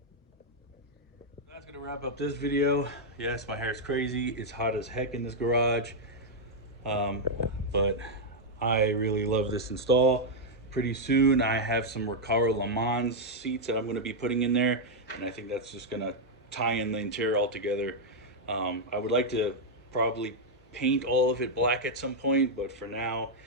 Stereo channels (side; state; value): both; normal; correlation -0.03